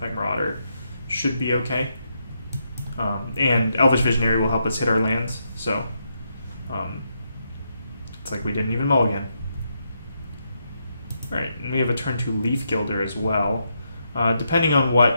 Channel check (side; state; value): both; inverted; correlation -0.80